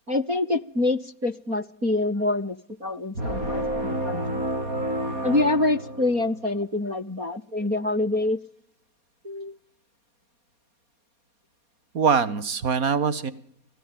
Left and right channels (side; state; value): left; late; 4.2 ms